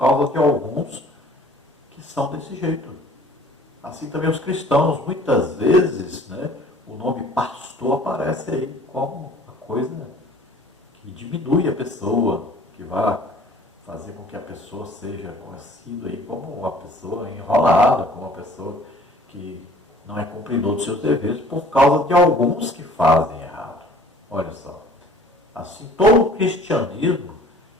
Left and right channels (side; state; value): both; normal; correlation 0.51